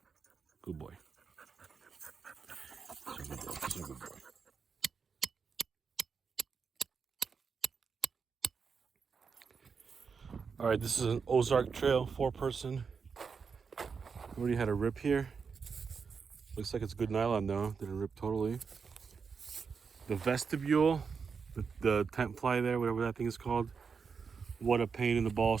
Good boy. So good boy. So good boy. All right, this is an Ozark Trail, 4-person. Already had a rip here. Looks like it's good nylon though. Didn't rip totally. The vestibule, the tent fly there, whatever that thing is called. What a pain in the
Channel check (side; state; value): left; quieter; 5.7 dB